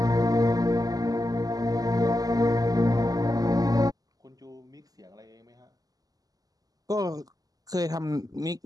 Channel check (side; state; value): left; late; 0.18 ms